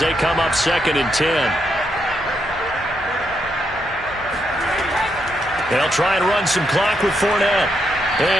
come up 2nd and 10. They'll try and run some clock with Fournette.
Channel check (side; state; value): left; noise; hum, 24 dB below the sound